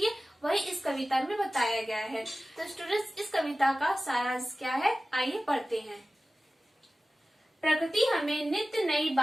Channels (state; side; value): normal; both; correlation 0.96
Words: है वही इस कविता में बताया गया है। तो स्टूडेंट्स, इस कविता का सारांश क्या है, आइए पढ़ते हैं। प्रकृति हमें नित्य नई